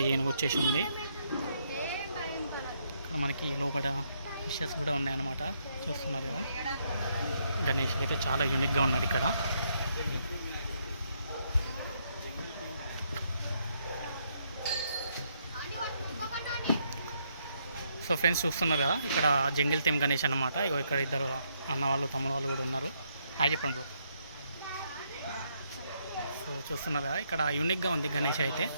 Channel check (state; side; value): inverted; both; correlation -0.75